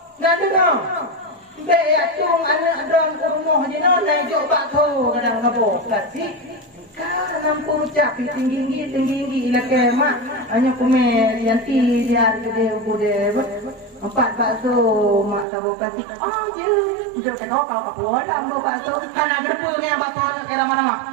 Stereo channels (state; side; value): drops out; left; at 15.5 s